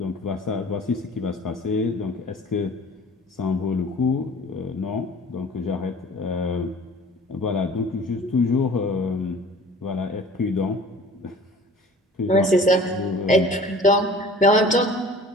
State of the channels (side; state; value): both; normal; correlation 0.45